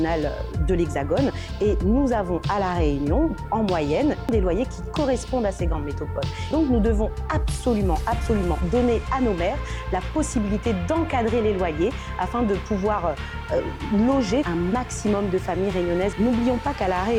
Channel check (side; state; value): both; identical; correlation 1.00